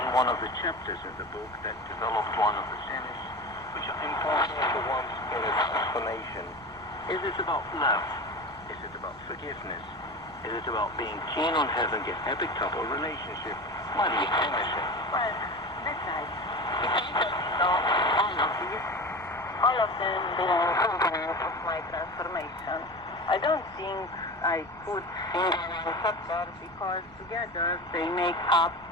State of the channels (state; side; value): noise; left; rumble, 27 dB below the sound